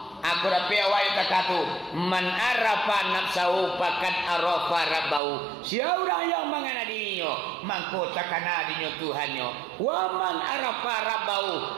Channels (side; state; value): left; drops out; at 5.2 s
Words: Aku dapat awak kata man arafa nafsahu faqad arafa rabbahu. Siapa yang mengana dirinya maka takana dirinya Tuhannya. Wa man arafa